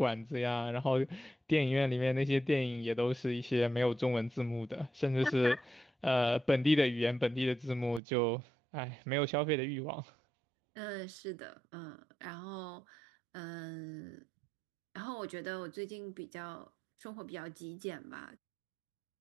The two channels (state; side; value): drops out; left; at 8.0 s